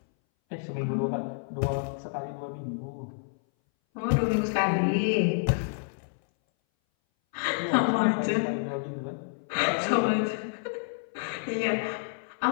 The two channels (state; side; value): silent; right; 59 dB below the other